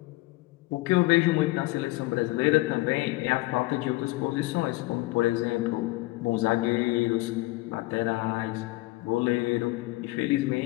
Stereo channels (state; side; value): quieter; right; 20.5 dB